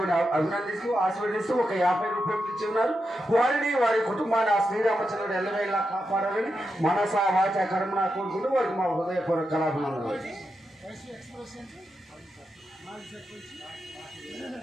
అభినందిస్తూ ఆశీర్వదిస్తూ ఒక 50 రూపాయలు ఇచ్చి ఉన్నారు. వారిని వారి కుటుంబాన్ని ఆ శ్రీరామచంద్రుడు ఎల్లవేళలా కాపాడాలని మనస వాచ కర్మన కోరుకుంటూ వారికి మా హృదయపూర్వక కళాభిమానులు.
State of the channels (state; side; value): normal; both; correlation 0.87